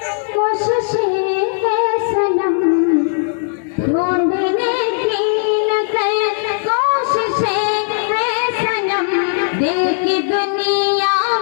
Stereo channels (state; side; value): silent; right; digital silence